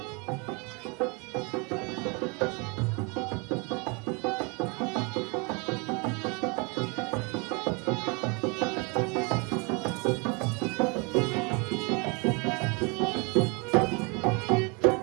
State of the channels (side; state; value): left; quieter; 31.1 dB